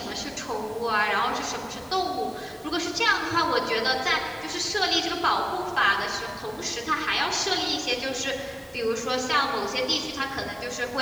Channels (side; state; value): both; identical; correlation 1.00